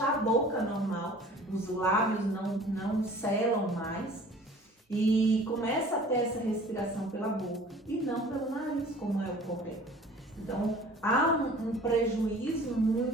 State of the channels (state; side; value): normal; both; correlation 0.48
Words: a boca normal, os lábios não selam mais e começa a ter essa respiração pela boca e não pelo nariz, como é o correto. Então, há um prejuízo